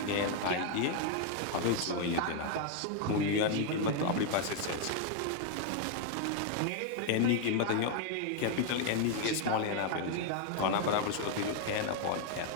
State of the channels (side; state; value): both; different; correlation 0.00